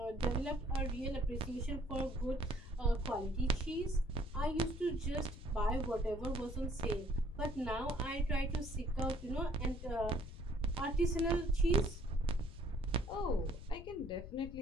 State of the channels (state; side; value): noise; left; rumble, 12 dB below the sound